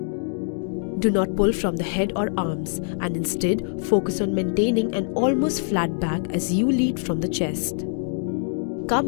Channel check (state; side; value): silent; right; digital silence